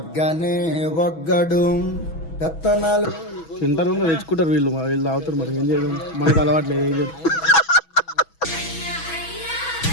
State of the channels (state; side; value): late; right; 6.1 ms